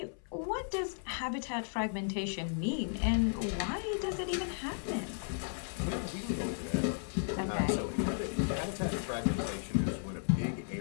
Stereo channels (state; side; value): silent; right; 55 dB below the other